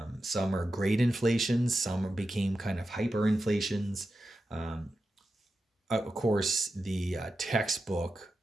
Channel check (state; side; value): normal; both; correlation 0.91